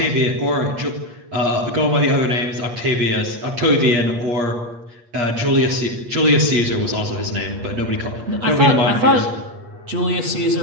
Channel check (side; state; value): left; late; 8.4 ms